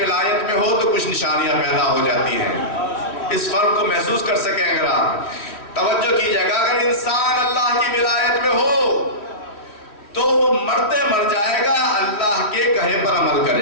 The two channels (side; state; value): right; late; 3.1 ms